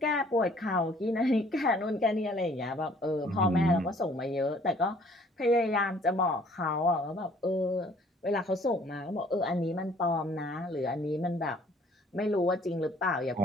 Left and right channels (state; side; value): normal; both; correlation 0.58